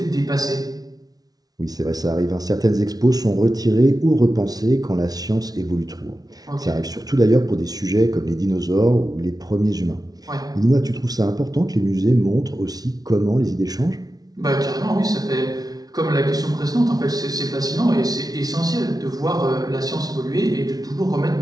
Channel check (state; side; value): late; left; 0.19 ms